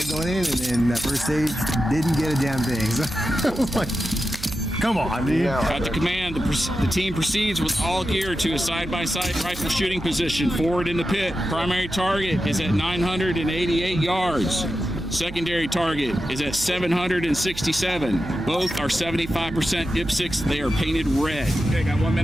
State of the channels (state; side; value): noise; right; hum, 13 dB below the sound